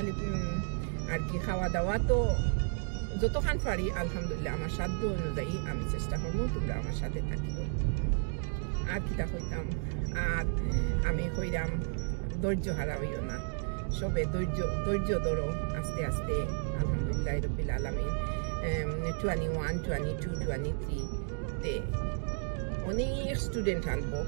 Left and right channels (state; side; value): silent; left; 56 dB below the other